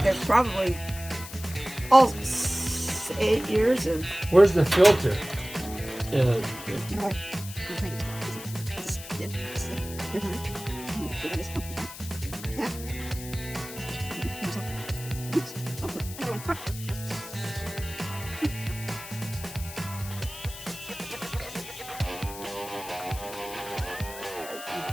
There's probably all 8 years of. Where's the filter?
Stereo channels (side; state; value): left; noise; hiss, 12 dB below the sound